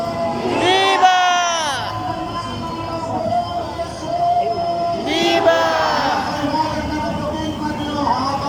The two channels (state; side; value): identical; both; correlation 1.00